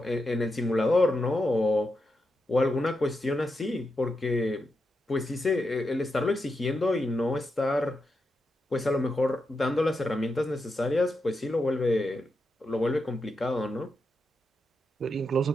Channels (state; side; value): normal; both; correlation 0.86